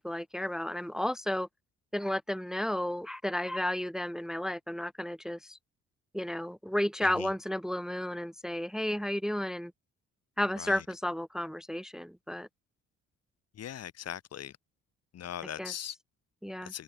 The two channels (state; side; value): normal; both; correlation 0.94